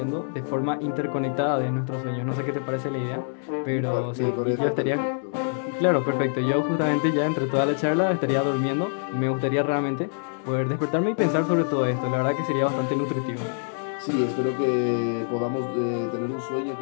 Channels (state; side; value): silent; right; 61 dB below the other